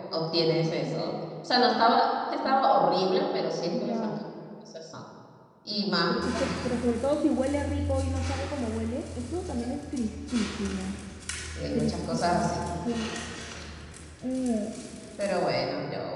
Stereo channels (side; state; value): both; identical; correlation 1.00